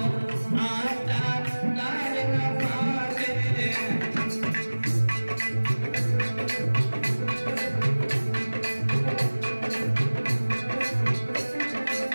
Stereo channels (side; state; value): both; inverted; correlation -1.00